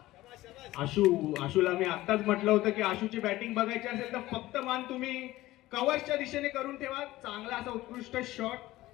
आशूला मी आत्ताच म्हटलं होतं की आशूची बॅटिंग बघायची असेल तर फक्त मान तुम्ही कव्हरच्या दिशेने करून ठेवा. चांगला असा उत्कृष्ट शॉट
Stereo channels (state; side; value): quieter; right; 17.1 dB